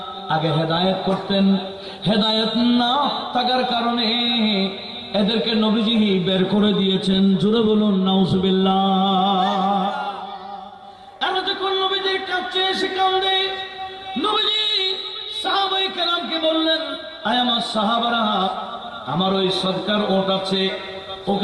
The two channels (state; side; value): identical; both; correlation 1.00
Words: আগে হেদায়েত করতেন। হেদায়েত না থাকার কারণে এদেরকে নবীজি বের করে দিয়েছেন। জোরে বলুন নাউজুবিল্লাহ। আমি যখন নবীজির কাছে এসে কান্দে, নবীজি সাহাবায়ে কেরামকে বললেন, আয় আমার সাহাবারা, আমার ওই সদকার ওট আছে,